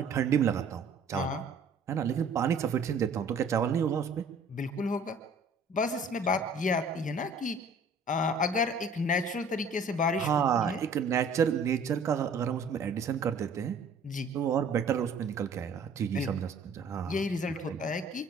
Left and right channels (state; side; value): quieter; left; 3.3 dB